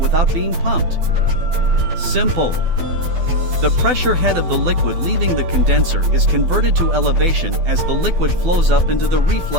being pumped? Simple. The pressure head of the liquid leaving the condenser is converted to elevation as the liquid flows up into the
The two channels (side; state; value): left; late; 12 ms